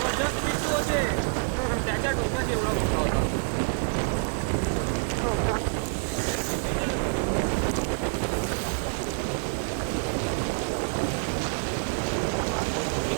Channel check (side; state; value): left; silent; 60 dB below the other